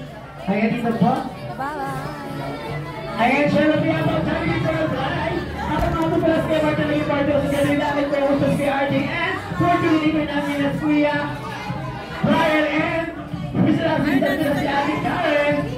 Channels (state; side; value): identical; both; correlation 1.00